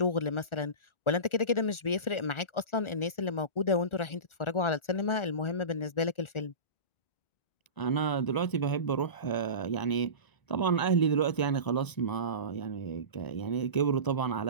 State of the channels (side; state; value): right; late; 1.4 ms